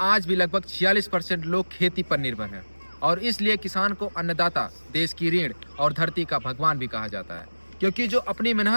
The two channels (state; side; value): inverted; both; correlation -1.00